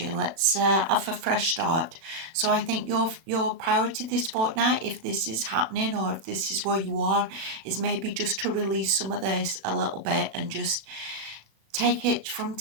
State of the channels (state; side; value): late; left; 36 ms